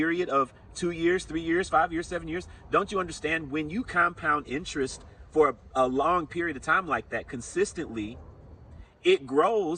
of 2 years, 3 years, 5 years, 7 years. Don't you understand, when you compound interest for a long period of time like that consistently, it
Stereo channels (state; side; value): identical; both; correlation 1.00